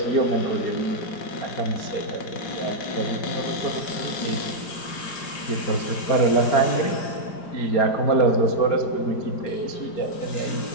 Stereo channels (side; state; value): right; late; 5.0 ms